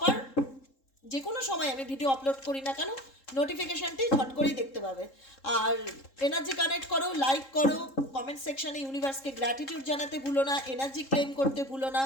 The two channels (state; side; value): late; right; 3.7 ms